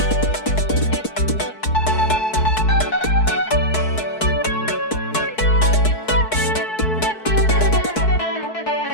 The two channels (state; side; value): late; right; 4.6 ms